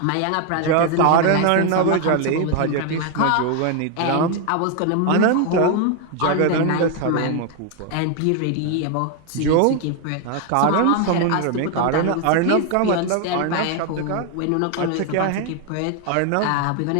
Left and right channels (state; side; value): different; both; correlation 0.01